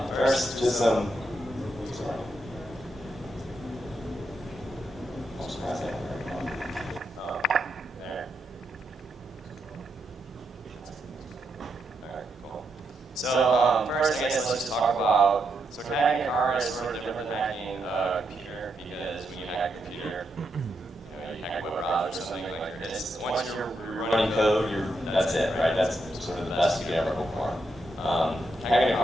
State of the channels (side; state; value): both; normal; correlation 0.82